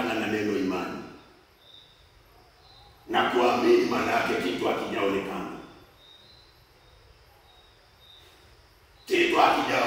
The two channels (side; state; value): both; identical; correlation 1.00